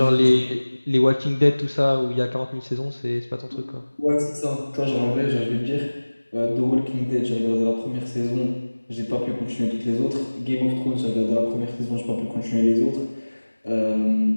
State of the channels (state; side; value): inverted; both; correlation -1.00